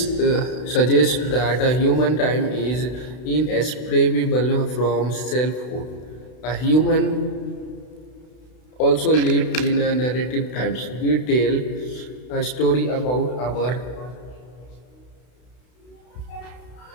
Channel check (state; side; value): late; right; 32 ms